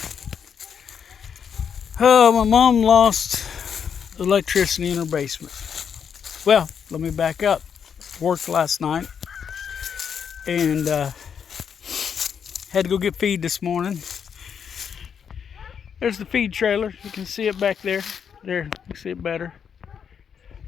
Oh, my mom lost electricity in her basement. Well, let me back up. Worked last night and had to go get feed this morning. There's the feed trailer. You can see it back there. There, you can see it better.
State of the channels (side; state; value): right; quieter; 7.3 dB